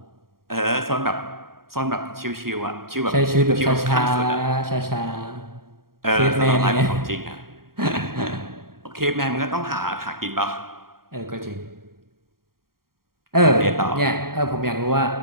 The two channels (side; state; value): left; late; 0.93 ms